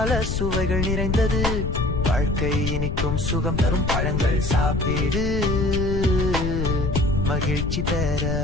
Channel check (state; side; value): noise; left; rumble, 1 dB below the sound